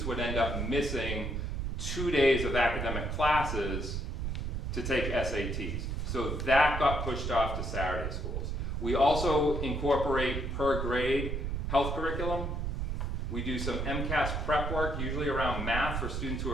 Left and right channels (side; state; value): right; noise; rumble, 2 dB below the sound